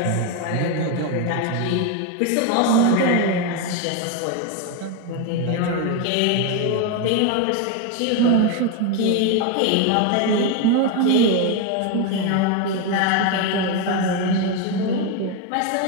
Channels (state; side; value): different; both; correlation 0.02